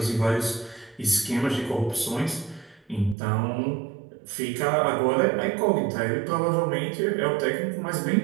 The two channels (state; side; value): drops out; left; at 3.2 s